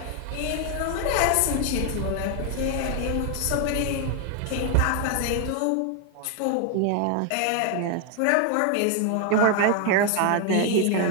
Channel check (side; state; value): both; different; correlation 0.00